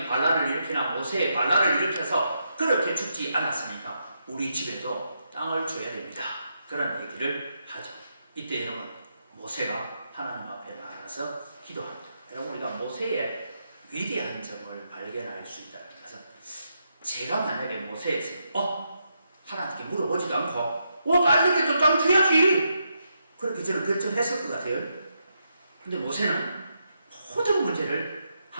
반란을 일으키나 모세의 반란을 일으켜서 그렇게 죽지 않았으니까 우리 집에도 땅을 줘야 됩니다. 그런 얘기를 하죠. 이때 여러분 모세가 하나님 앞에 나가서 기도합니다. 여러분 우리가 모세의 위대한 점을 발견할 수 있다는 것은 제가 만약에 모세에서 하나님께 물어보지도 않고 딸에게도 땅 줘야지 그렇게 저는 결정했을 것 같아요. 근데 모세는 모든 문제를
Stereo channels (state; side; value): inverted; both; correlation -0.82